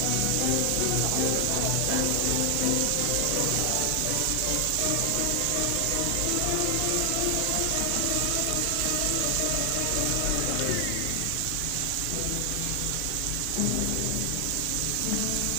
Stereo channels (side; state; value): both; different; correlation 0.00